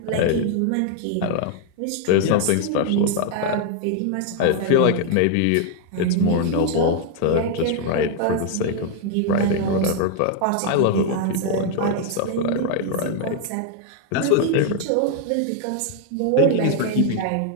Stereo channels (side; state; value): both; different; correlation 0.00